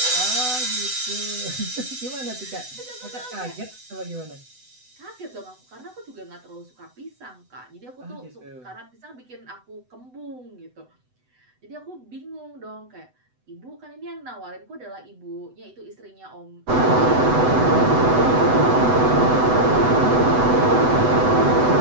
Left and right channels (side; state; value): left; late; 8.0 ms